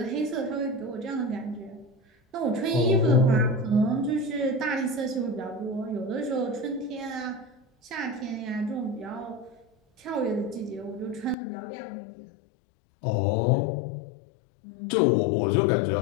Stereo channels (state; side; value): drops out; right; at 11.4 s